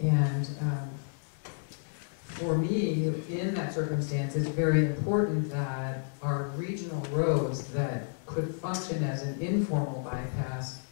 And for me, in that circumstance, it's very important that our regional roads that could function as an informal bypass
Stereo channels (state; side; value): silent; right; digital silence